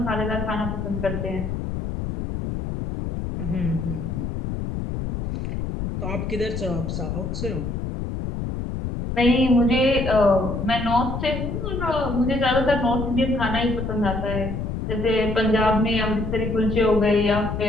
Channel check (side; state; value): left; noise; rumble, 4 dB below the sound